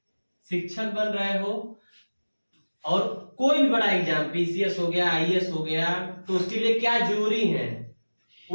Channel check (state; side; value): inverted; both; correlation -1.00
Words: शिक्षक बन रहे हो, और कोई भी बड़ा एग्जाम, पीसीएस हो गया, आईएएस हो गया, तो उसके लिए क्या जरूरी है